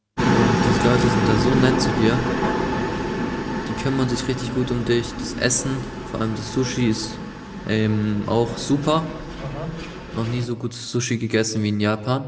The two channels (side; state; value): both; identical; correlation 1.00